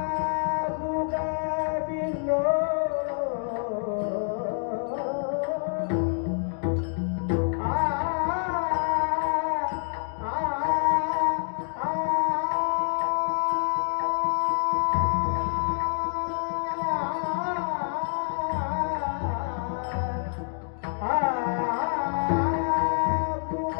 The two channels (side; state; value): right; silent; digital silence